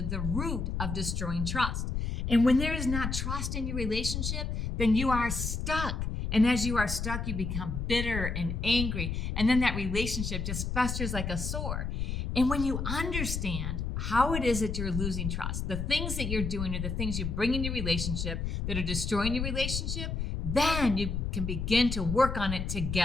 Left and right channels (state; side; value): noise; left; rumble, 2 dB below the sound